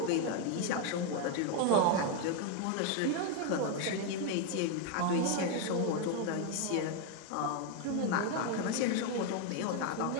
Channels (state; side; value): different; both; correlation 0.01